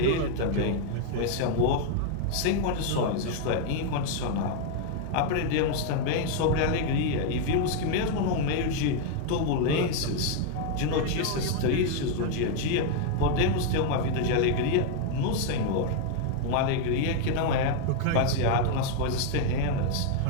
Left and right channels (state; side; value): different; both; correlation 0.00